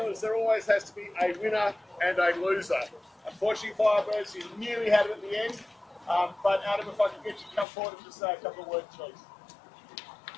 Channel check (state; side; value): drops out; right; at 7.7 s